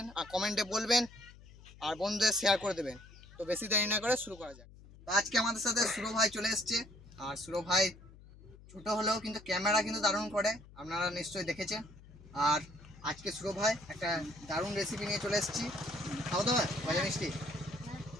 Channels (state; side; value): noise; left; hum, 20 dB below the sound